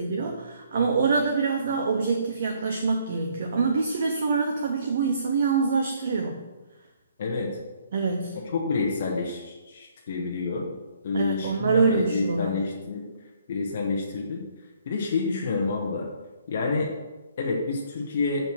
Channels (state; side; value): inverted; both; correlation -0.65